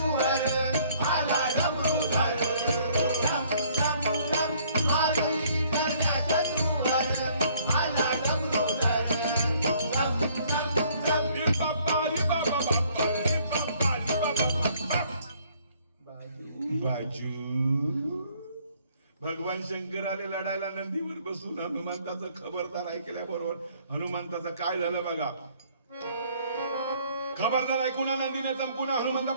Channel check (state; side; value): inverted; both; correlation -0.61